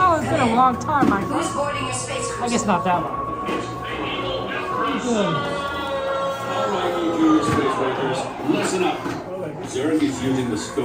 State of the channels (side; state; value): both; identical; correlation 1.00